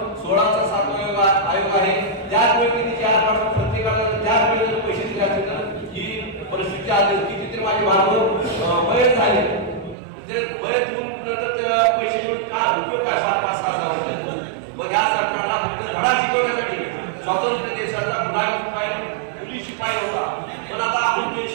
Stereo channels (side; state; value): left; drops out; at 10.0 s